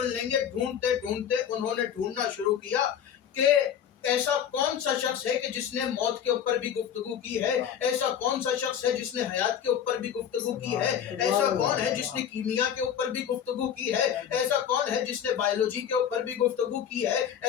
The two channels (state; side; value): quieter; right; 8.9 dB